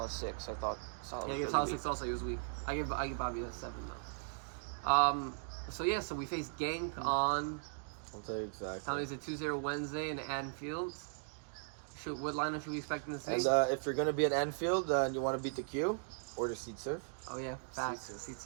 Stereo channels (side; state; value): left; silent; digital silence